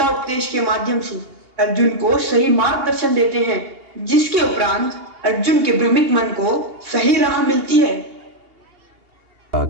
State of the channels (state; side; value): late; left; 2.8 ms